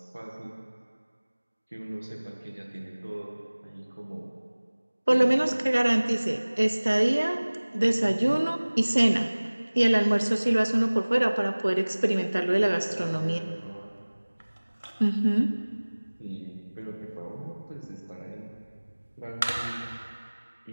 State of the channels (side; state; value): both; inverted; correlation -1.00